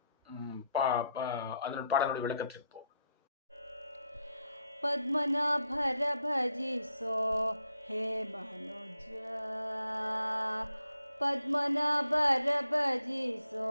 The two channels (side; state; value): both; inverted; correlation -0.77